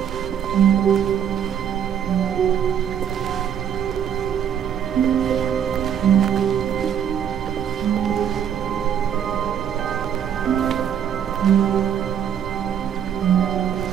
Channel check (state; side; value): quieter; left; 9.0 dB